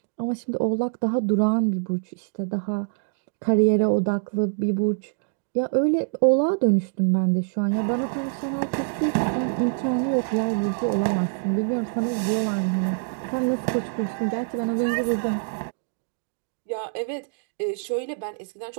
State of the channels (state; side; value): silent; left; digital silence